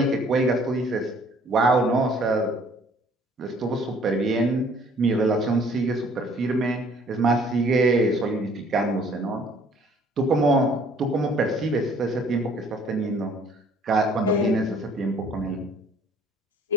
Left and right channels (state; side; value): normal; both; correlation 0.58